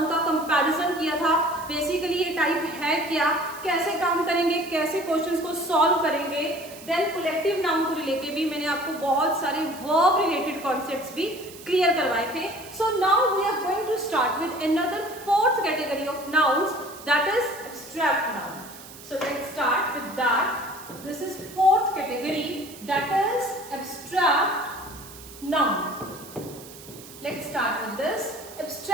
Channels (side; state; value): right; noise; hiss, 17 dB below the sound